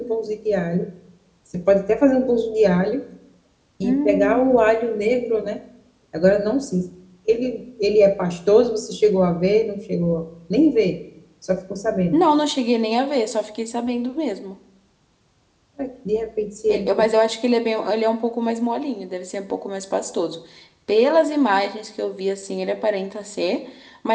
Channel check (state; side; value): identical; both; correlation 1.00